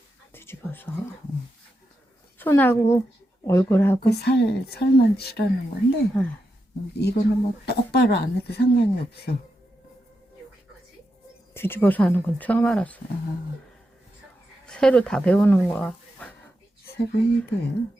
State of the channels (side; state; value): both; normal; correlation 0.86